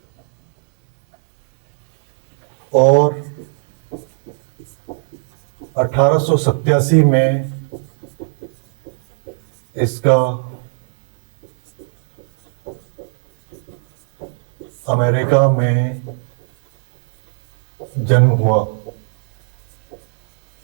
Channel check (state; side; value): silent; left; 65 dB below the other